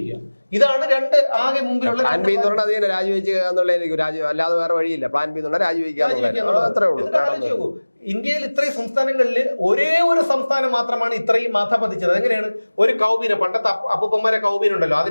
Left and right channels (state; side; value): inverted; both; correlation -1.00